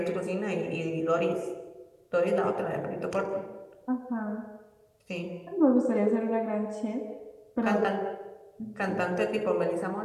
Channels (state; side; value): identical; both; correlation 1.00